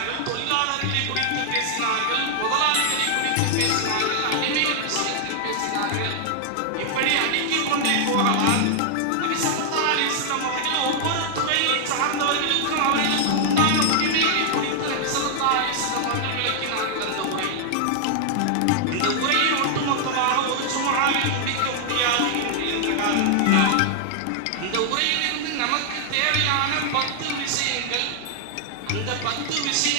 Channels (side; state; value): both; different; correlation 0.00